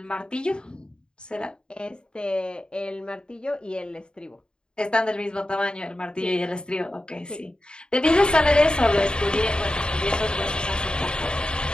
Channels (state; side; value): late; right; 0.050 ms